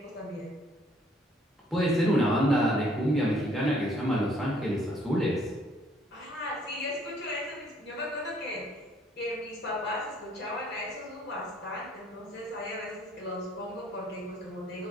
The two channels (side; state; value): both; normal; correlation 0.63